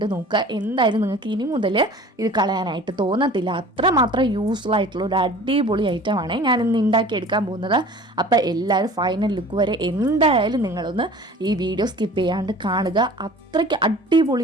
നോക്കുക. എന്തായാലും നിങ്ങൾക്ക് ഇനി മുതൽ ഇത് കളയാനായിട്ട് തോന്നത്തില്ല. അത്രമാത്രം യൂസ്ഫുൾ ആയിട്ടുള്ള ഒരു അടിപൊളി ഐറ്റമാണ് ഞാനിന്ന് ഉണ്ടാക്കിയെടുക്കാൻ പോകുന്നത്. അപ്പോൾ എല്ലാവരും ഫൈനൽ ലുക്ക് വരെ എന്തായാലും നിങ്ങളൊന്ന് ഈ വീഡിയോ സ്കിപ്പ് ചെയ്യാണ്ട് കാണുക. അത്രയ്ക്ക്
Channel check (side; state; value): both; normal; correlation 0.44